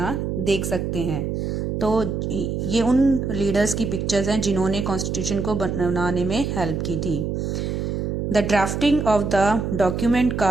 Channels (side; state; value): right; noise; hum, 2 dB below the sound